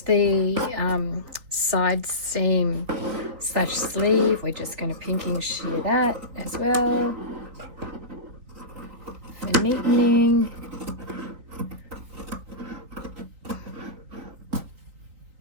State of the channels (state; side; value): late; left; 3.9 ms